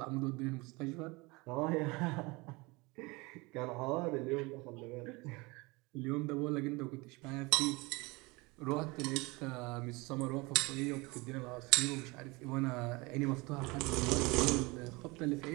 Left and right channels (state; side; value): quieter; left; 25.1 dB